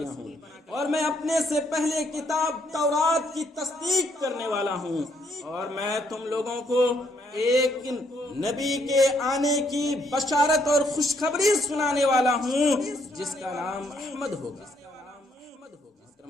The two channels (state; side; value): normal; both; correlation 0.71